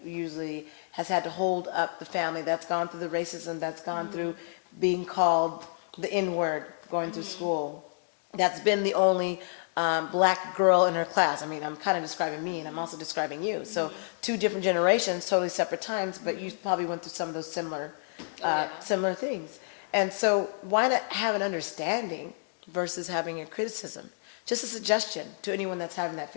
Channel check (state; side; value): silent; right; digital silence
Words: usually has had to hold up the family, that's gone through the racism, that's gone through being called the N-word, going through school, that's been the only black girl in her class. I mean, I'm kind of describing me, and I'm also describing you. So 2 different generations, totally separate times, but you probably went through some of those similar similar things. And so why not have an understanding versus having a criticism? Just a suggestion to anyone that's having that